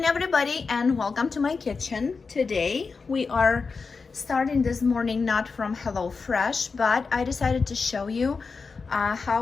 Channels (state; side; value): quieter; right; 4.7 dB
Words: everybody, and welcome to my kitchen. Today we are starting this morning not from HelloFresh, but I decided to show you